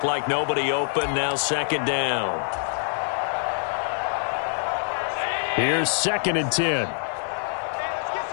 like nobody open, now 2nd down. Here's 2nd and 10.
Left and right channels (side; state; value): right; silent; digital silence